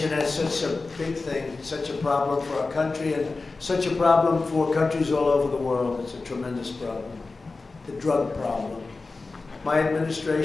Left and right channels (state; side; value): quieter; right; 3.8 dB